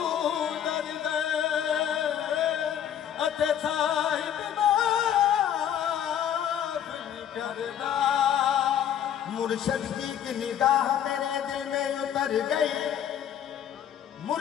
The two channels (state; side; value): quieter; right; 9.7 dB